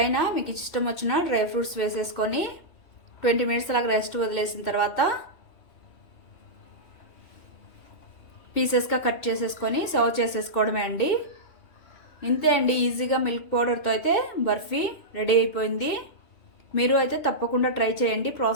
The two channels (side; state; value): right; late; 2.8 ms